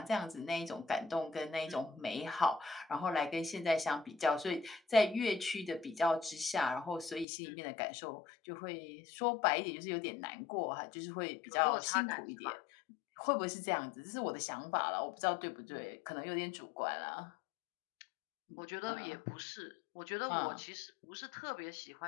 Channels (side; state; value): right; drops out; at 7.2 s